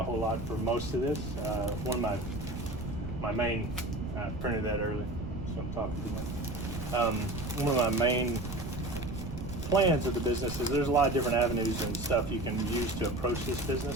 whole lot for most of this. One of my main, I printed that early, so I'm talking too much. One of my main plans of the business is there's a lot of different avenues and stuff you can use to approach this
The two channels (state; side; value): noise; right; rumble, 8 dB below the sound